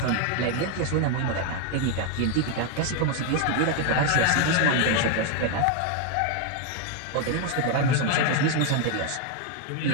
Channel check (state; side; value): different; both; correlation 0.01